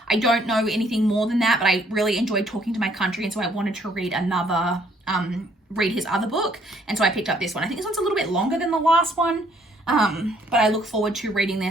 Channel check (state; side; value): normal; both; correlation 0.64